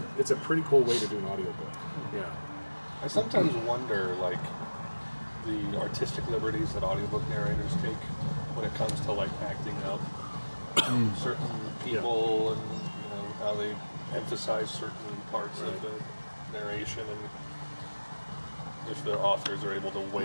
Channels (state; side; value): inverted; both; correlation -1.00